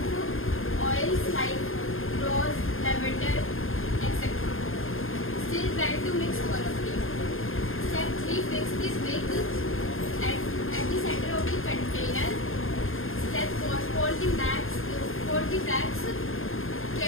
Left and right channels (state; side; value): late; right; 0.60 ms